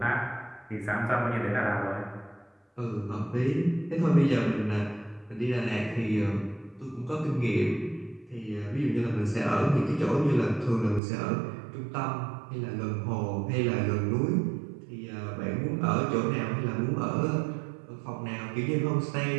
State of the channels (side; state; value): left; drops out; at 11.0 s